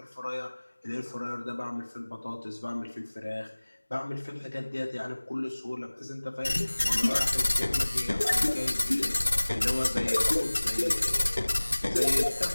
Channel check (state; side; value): inverted; both; correlation -1.00